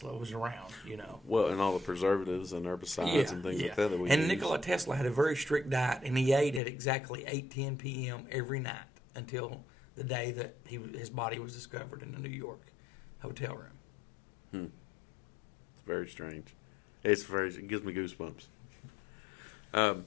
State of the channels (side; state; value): right; drops out; at 6.6 s